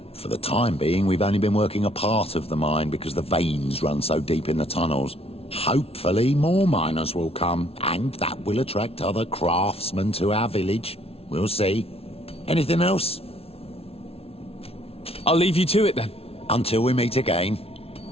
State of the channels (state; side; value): late; right; 0.29 ms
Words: For the time being, we've only been working a part of the mine because the veins run so deep in the tunnels. Hopefully more miners will come, and that will attract other craftsmen to our village. We'll see. Anything else? I'll leave you to it then. Until we meet again.